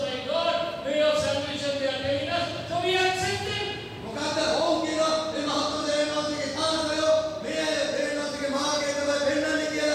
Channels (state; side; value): identical; both; correlation 1.00